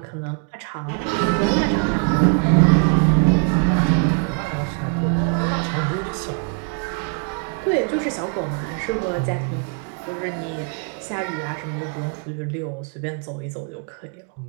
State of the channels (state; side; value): quieter; left; 38.4 dB